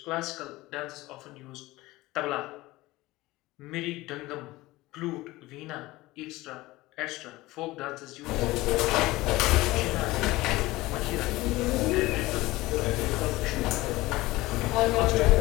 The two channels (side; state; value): right; quieter; 19.2 dB